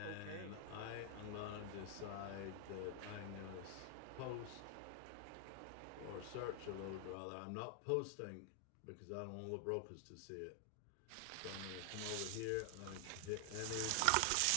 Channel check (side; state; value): both; different; correlation 0.00